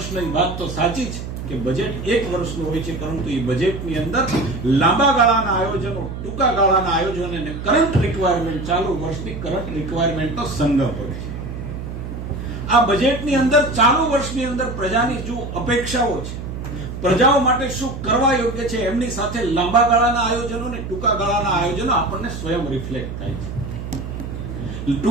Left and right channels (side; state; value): right; noise; hum, 8 dB below the sound